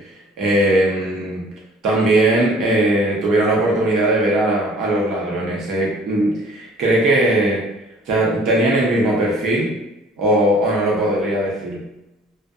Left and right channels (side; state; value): both; normal; correlation 0.53